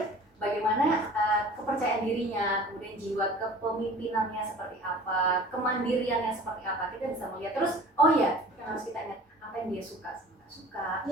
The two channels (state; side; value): normal; both; correlation 0.44